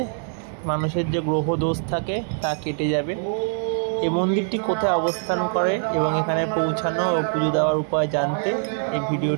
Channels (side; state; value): left; silent; 63 dB below the other